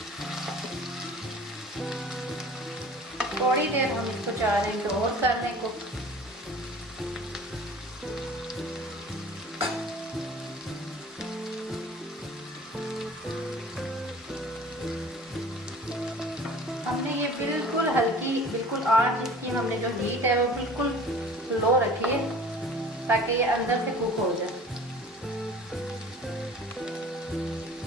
थोड़ी देर हम इसको 4 मिनट और कर दें कुक। हमने ये बिल्कुल हल्की, बिल्कुल आंच इसकी हमने जो हीट है वो बिल्कुल लो रखी है ताकि ये अंदर से कुक हो जाए।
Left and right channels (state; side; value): normal; both; correlation 0.44